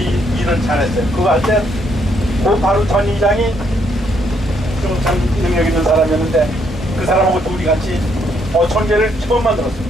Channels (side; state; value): both; normal; correlation 0.72